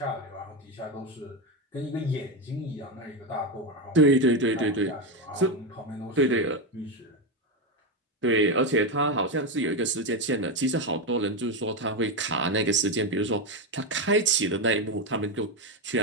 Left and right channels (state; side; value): normal; both; correlation 0.10